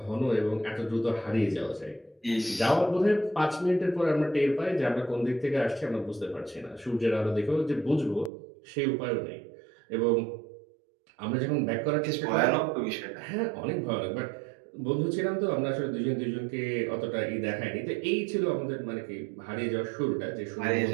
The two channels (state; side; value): drops out; left; at 8.3 s